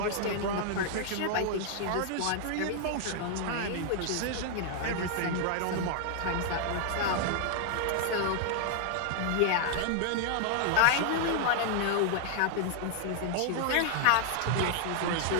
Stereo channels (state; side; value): different; both; correlation 0.00